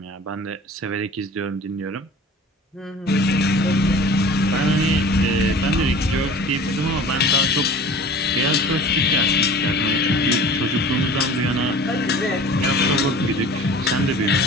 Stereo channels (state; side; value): normal; both; correlation 0.43